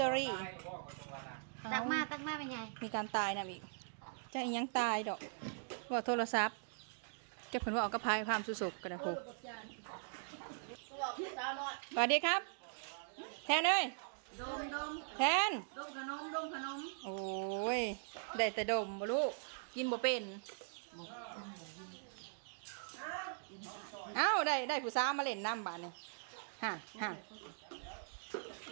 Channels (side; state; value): left; silent; digital silence